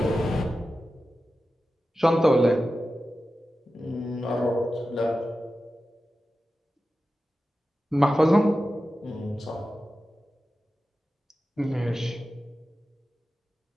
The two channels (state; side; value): normal; both; correlation 0.93